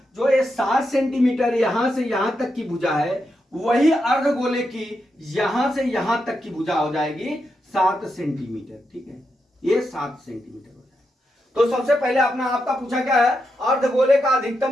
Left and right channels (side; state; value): both; normal; correlation 0.85